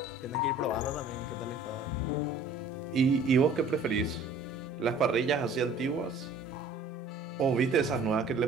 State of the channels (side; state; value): left; quieter; 3.2 dB